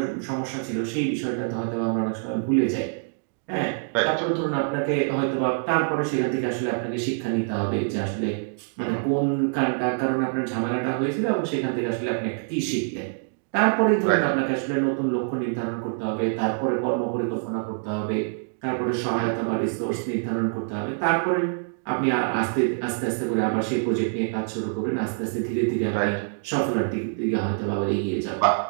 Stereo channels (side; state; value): left; silent; digital silence